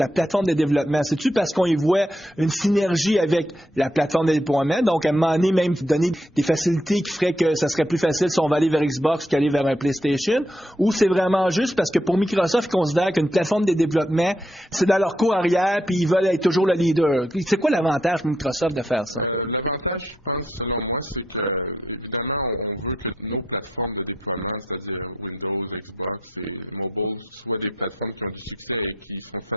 plateforme de développement? C'est-tu parce qu'on y voit une synergie avec la plateforme de déploiement? Donc, à un moment donné, même donner des facilités qui feraient que ça serait plus facile si on va aller vers Xbox qu'aller vers un PlayStation? Ou c'est vraiment juste parce que pour Microsoft, ils considèrent qu'une plateforme de développement, c'est dans leur cours puis ils veulent être toujours le leader. C'est quoi l'avantage pour Microsoft de faire ça? L'avantage, je pense, selon moi, c'est que, évidemment, on veut que nos plateformes de déploiement, c'est-à-dire Windows, Xbox et mobile, soient des plateformes qui ont du succès et qui sont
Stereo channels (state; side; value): normal; both; correlation 0.76